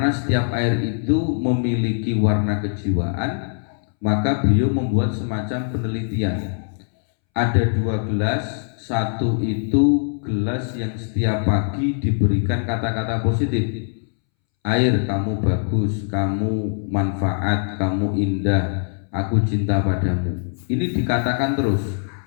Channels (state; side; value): silent; right; 64 dB below the other